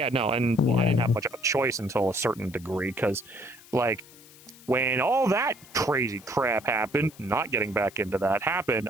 no, and I didn't have much of a choice until a certain degree, because, like, when all that crazy crap happened, not getting back into that happened,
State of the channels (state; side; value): noise; left; hiss, 22 dB below the sound